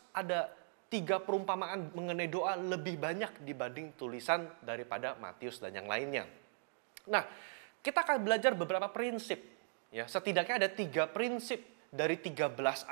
ada 3 perumpamaan mengenai doa lebih banyak dibanding tulisan daripada Matius dan yang lainnya. Nah, kita akan belajar beberapa prinsip. Ya, setidaknya ada 3 prinsip dari 13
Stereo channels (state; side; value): silent; left; digital silence